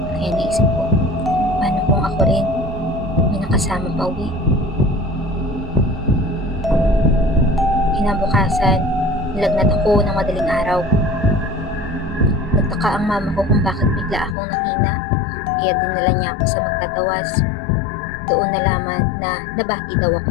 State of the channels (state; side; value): drops out; right; at 14.4 s